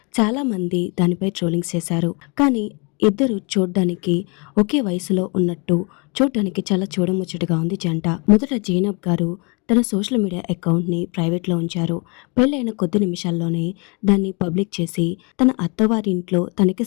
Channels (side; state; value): right; quieter; 31.9 dB